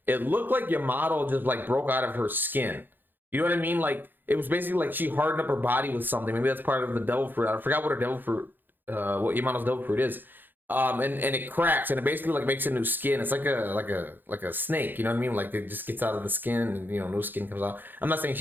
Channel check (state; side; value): late; left; 0.092 ms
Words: it looked like Yamato just, like, broke out of her skin. You know what I mean? Like, it was basically like she hardened up her body with something. Maybe that's part of the devil fruit. I forgot what her devil fruit, what Yamato's devil fruit is. And it cracks, and it basically, like, makes a new skin. It's like a snake. You know what I mean? Like, it just gets out of the skin, and new skin comes out. I'm not saying